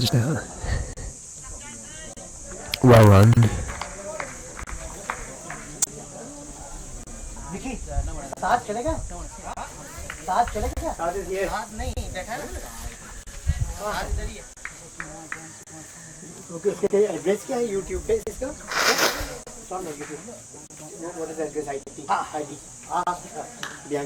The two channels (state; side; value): identical; both; correlation 1.00